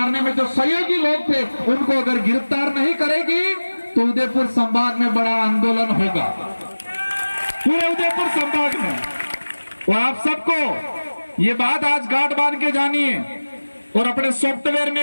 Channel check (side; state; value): both; inverted; correlation -1.00